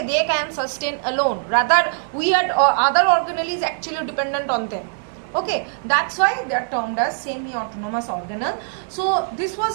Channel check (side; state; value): left; silent; digital silence